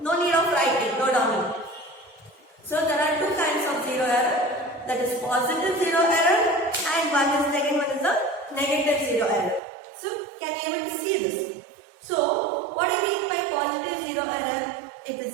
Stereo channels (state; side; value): drops out; left; at 9.6 s